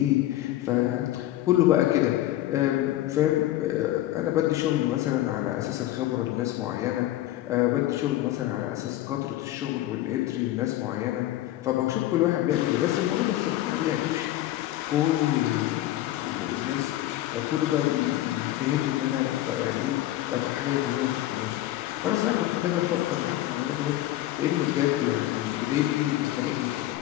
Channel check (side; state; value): right; quieter; 14.7 dB